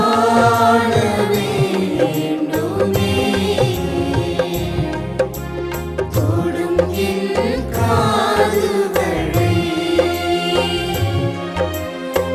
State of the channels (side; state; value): both; identical; correlation 1.00